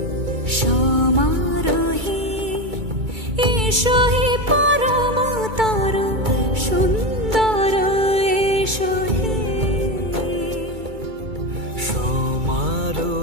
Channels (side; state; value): left; late; 2.3 ms